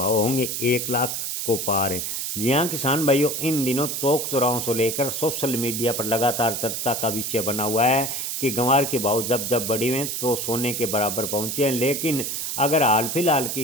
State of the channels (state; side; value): noise; right; hiss, 3 dB below the sound